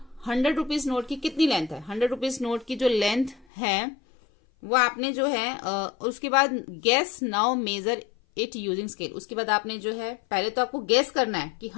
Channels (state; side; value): drops out; right; at 3.5 s